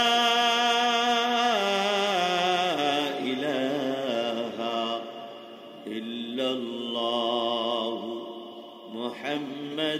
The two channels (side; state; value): both; identical; correlation 1.00